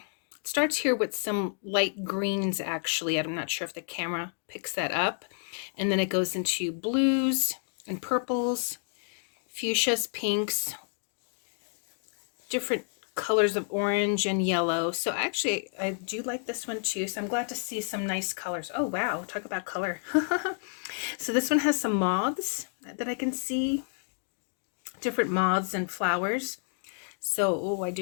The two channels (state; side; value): silent; right; 57 dB below the other